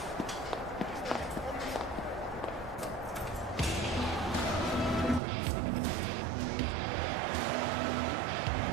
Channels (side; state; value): left; drops out; at 5.2 s